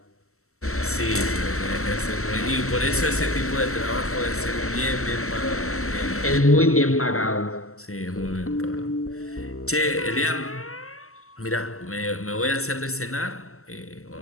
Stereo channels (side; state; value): right; late; 0.63 ms